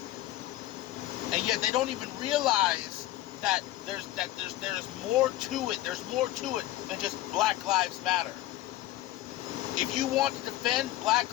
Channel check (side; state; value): right; quieter; 15.2 dB